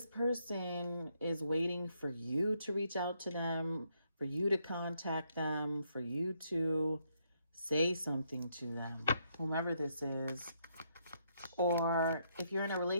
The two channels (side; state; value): both; inverted; correlation -0.75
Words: person is waiting for you to reach out to them, for you to contact them, for you to say something to them, whomever this is. Or if you're in a